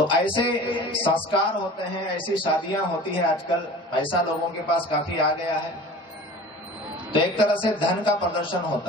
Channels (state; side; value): normal; both; correlation 0.40